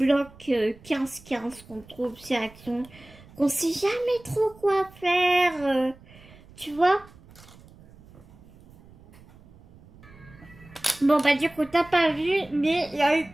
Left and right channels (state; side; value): noise; right; rumble, 23 dB below the sound